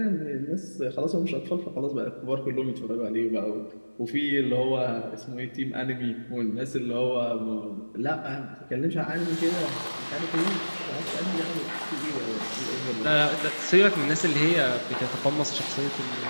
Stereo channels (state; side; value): inverted; both; correlation -1.00